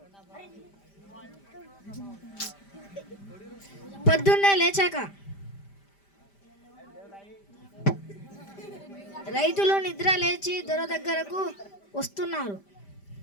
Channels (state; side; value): late; right; 5.1 ms